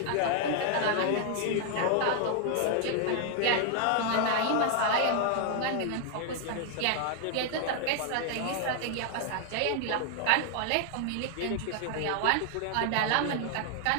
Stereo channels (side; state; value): both; different; correlation 0.00